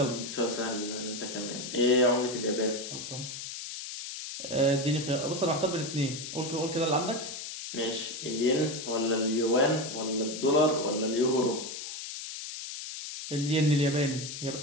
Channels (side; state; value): left; noise; hiss, 8 dB below the sound